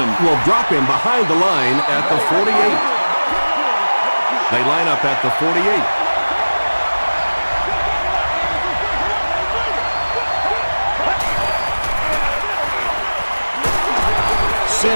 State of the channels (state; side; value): inverted; both; correlation -1.00